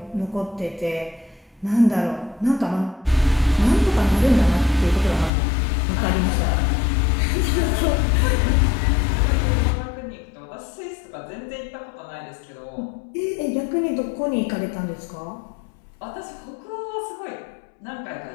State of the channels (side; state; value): right; drops out; at 5.3 s